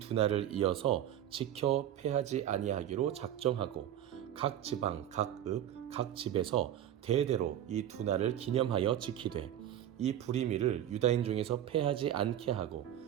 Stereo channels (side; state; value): left; quieter; 11.2 dB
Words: 날을 이어서 지켜 패하지 아니하기로 작정하고 각 지방, 각 읍, 각 집에서 대대로 이 두 날을 기념하여 지키되 이 부리미를 유다인 중에서 패하지 않게 하고